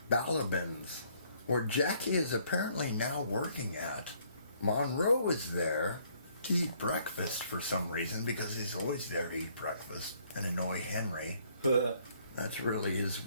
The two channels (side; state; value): both; inverted; correlation -0.65